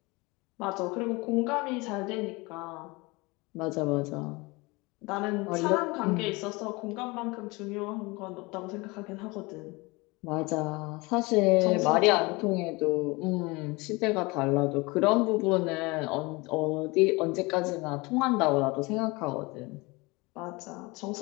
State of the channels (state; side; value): quieter; right; 24.9 dB